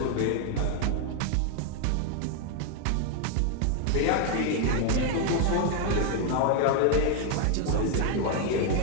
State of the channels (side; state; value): both; different; correlation 0.01